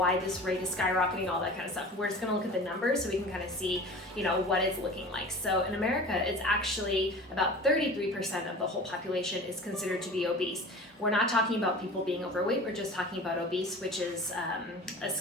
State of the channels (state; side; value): normal; both; correlation 0.38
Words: this rate is skyrocketing, all that kind of stuff. We're just gonna look at the numbers so we can kind of see, what it's looking like. So in America, it's actually about 33% of the whole population is considered to be obese. We're not talking about people being overweight, we're just talking about obese, which is a